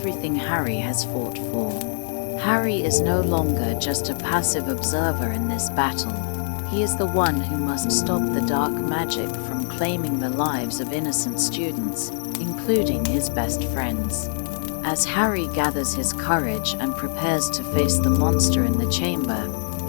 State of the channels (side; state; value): right; silent; digital silence